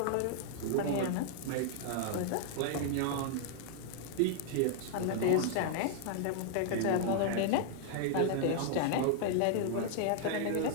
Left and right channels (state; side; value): different; both; correlation -0.01